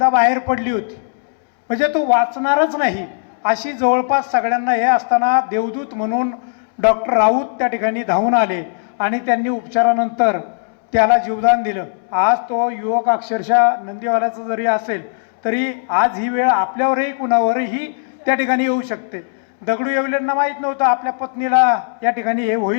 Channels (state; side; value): silent; right; 68 dB below the other